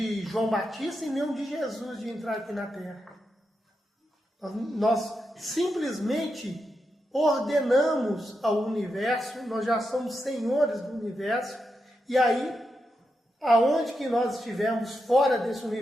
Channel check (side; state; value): both; normal; correlation 0.86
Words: João Batista e nem o de Jesus de entrar aqui na Terra. Nós simplesmente ordenamos ao universo, nós já somos senhores do universo, e aí, aonde que nós estivermos fora desse